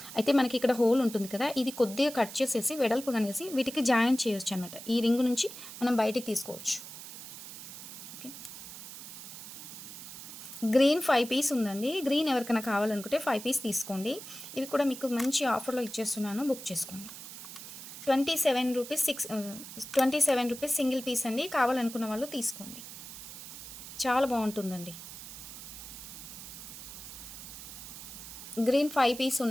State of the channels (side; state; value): right; noise; hiss, 12 dB below the sound